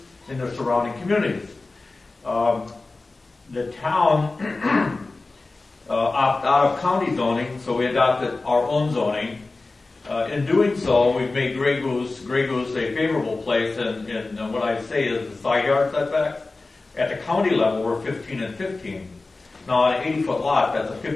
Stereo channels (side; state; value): right; quieter; 3.4 dB